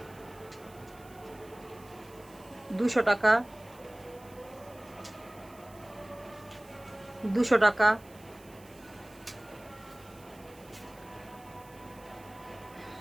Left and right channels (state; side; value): noise; right; hiss, 24 dB below the sound